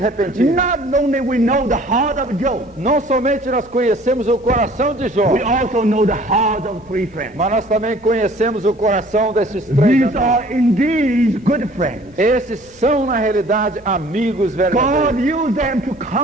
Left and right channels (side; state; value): both; normal; correlation 0.52